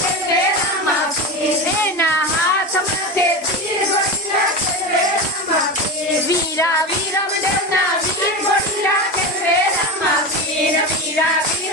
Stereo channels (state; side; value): normal; both; correlation 0.23